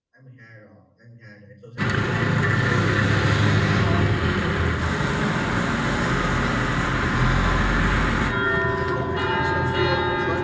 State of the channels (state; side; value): identical; both; correlation 1.00